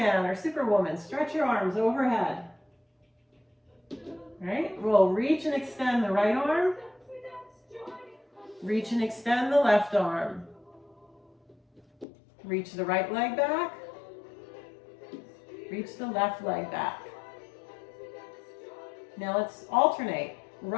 or Superwoman. Stretch your arms overhead. All right, we'll reach and extend the right arm. Reach and extend the left arm. Reach the right leg back. Reach the left leg back. Now let's alternate.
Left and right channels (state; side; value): drops out; right; at 12.1 s